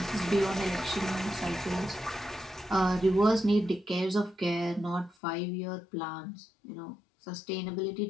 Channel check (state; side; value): drops out; right; at 5.2 s